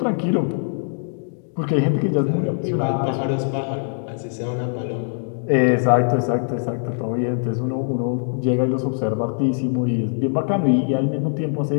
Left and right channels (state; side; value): silent; right; digital silence